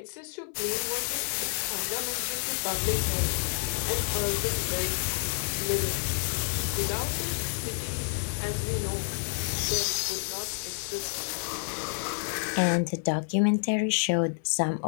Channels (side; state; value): right; silent; 58 dB below the other